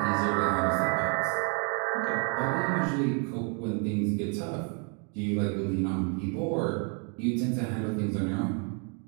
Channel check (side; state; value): left; quieter; 38.7 dB